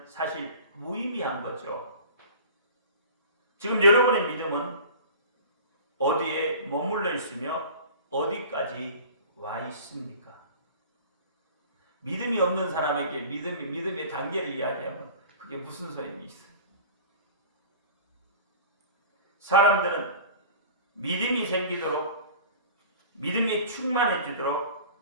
사실 무의미한 거죠. 지금 여러분의 믿음은 어디에 머물러 있으며 어디까지 와 있습니까? 믿음이 없는 사람에게 믿음의 단계를 이야기하면 그게 무슨 소용이 있어요? 사람들은 믿음이 생기도록 믿음이 충만해지도록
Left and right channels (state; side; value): inverted; both; correlation -0.40